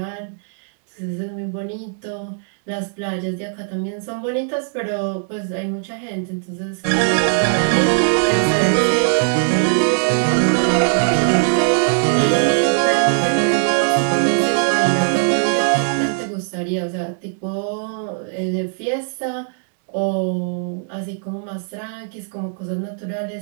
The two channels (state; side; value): silent; left; digital silence